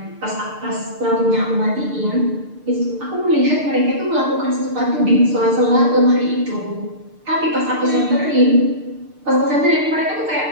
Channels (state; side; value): late; left; 6.7 ms